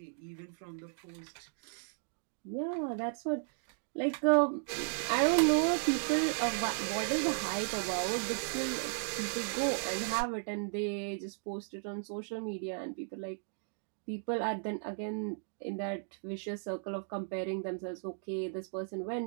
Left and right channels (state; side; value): silent; left; digital silence